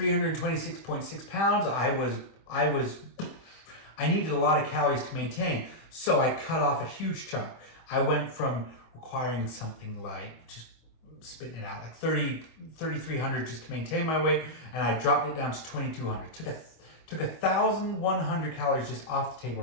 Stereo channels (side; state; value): right; late; 25 ms